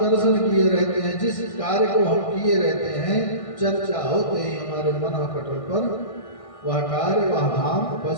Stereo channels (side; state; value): right; late; 1.6 ms